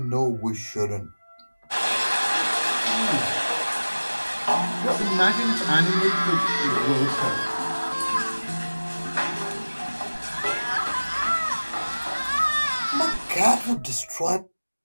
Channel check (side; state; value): both; inverted; correlation -1.00